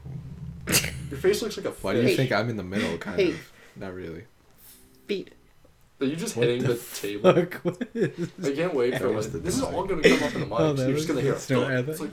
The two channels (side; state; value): both; identical; correlation 1.00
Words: Your face looks like a Why do fish. you think I'm in the middle? Kind Hey. of. Not really. Beat. Are you just What hitting the the table? Fuck. What is I can't wait for That was the this is dog. all gonna come up in the mic. Oh, so that you're just was gonna hear good. No, I it's thought